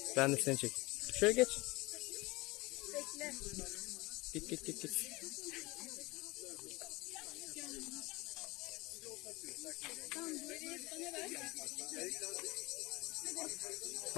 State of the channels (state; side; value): quieter; right; 23.0 dB